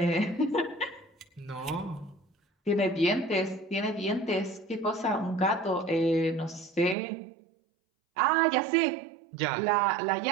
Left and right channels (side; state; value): left; drops out; at 7.0 s